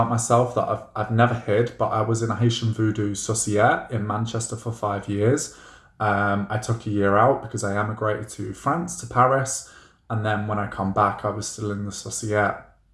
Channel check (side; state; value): both; identical; correlation 1.00